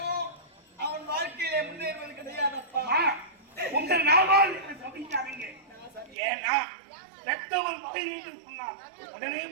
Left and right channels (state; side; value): drops out; left; at 6.2 s